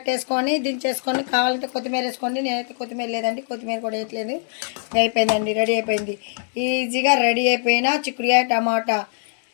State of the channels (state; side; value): silent; right; 62 dB below the other